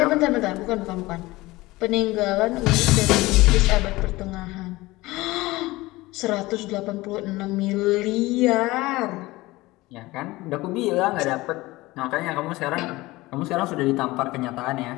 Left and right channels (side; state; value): right; quieter; 19.9 dB